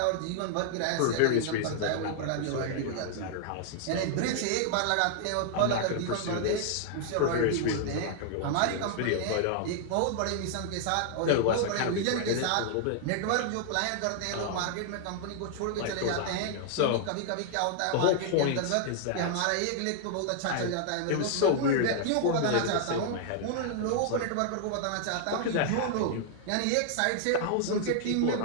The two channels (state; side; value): different; both; correlation -0.01